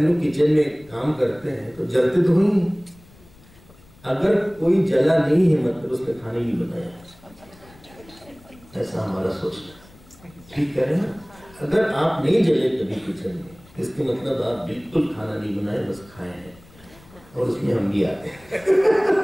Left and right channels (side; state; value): left; noise; rumble, 25 dB below the sound